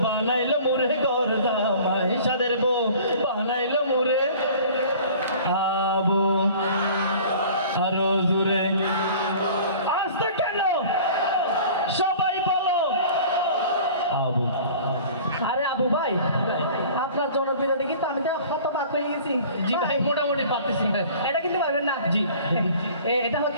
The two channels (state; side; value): inverted; both; correlation -0.46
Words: বানাইলো মোরে ঘর জামাই, সাদের বউ বানাইলো মোরে। আবু আরো জোরে। আসতে কেন সবাই বলো আবু। আরে আবু ভাই, আপনার জনপ্রিয়তা দেখি তো আমি তো হতবাক হয়ে গেছি। জি ভাই মোটামুটি পারতেছি। এটা কিন্তু পারবেন না। জি। এটা